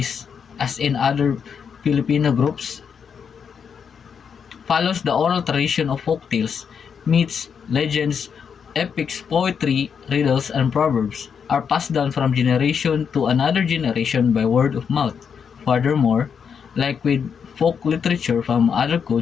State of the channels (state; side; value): quieter; right; 6.8 dB